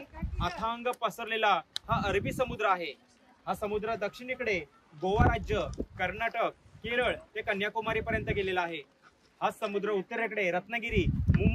अथांग पसरलेला हा अरबी समुद्र आहे. हा समुद्र दक्षिणेकडे गोवा राज्य, कर्नाटक, केरळ ते कन्याकुमारी पर्यंत गेलेला आहे. हा समुद्र उत्तरेकडे रत्नागिरी,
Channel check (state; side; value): identical; both; correlation 1.00